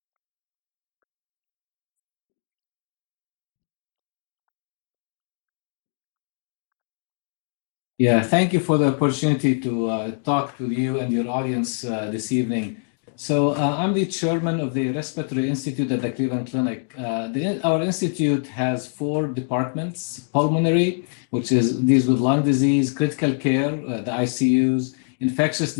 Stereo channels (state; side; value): silent; right; digital silence